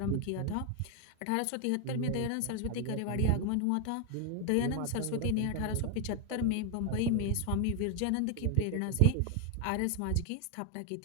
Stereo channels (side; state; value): both; different; correlation 0.00